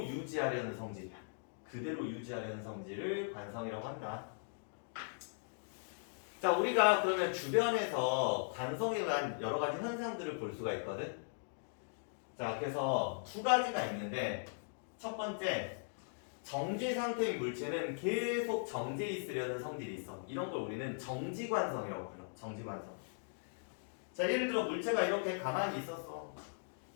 유지하려는 성질이야. 그대로 유지하려는 성질을 관성이라고 한다. 자, 우리가 그러면 주변에서 관성에 대한 여러 가지 현상들을 볼 수가 있거든. 자, 그래서 두 가지가 있는데 첫 번째, 정지 상태인 물체는 계속 정지해 있으려는 성질이 있어. 이런 걸 우리는 정지관성이라고 불러. 정지관성. 자, 예를 들어 물체가 이렇게 가만히 있었어.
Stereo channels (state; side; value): silent; right; digital silence